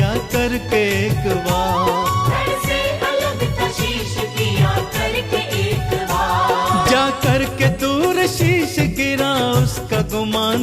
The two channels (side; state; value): both; identical; correlation 1.00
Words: करके एक बार। धड़ से अलग था शीश किया करके एक बार। जा करके दूर शीश गिरा उसका